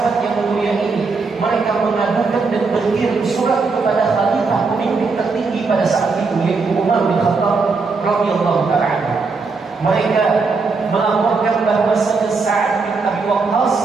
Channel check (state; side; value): quieter; left; 4.3 dB